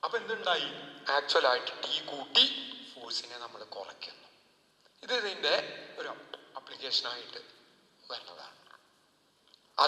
അപ്പൊ എന്തുണ്ടായി? ആക്ച്വലായിട്ട് ടി കൂട്ടി ഫോഴ്സിനെ നമ്മൾ കുറയ്ക്കുന്നു. ഇത് ഇതിന്റെ ഒരു അപ്ലിക്കേഷനായിട്ട് വരുന്നതാണ്.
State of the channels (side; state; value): both; identical; correlation 1.00